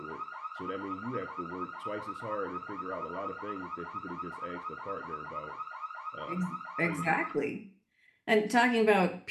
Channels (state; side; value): identical; both; correlation 1.00